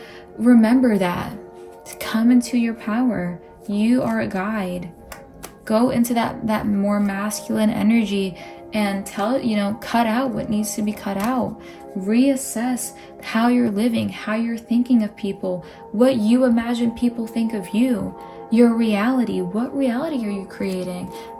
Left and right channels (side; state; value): both; identical; correlation 1.00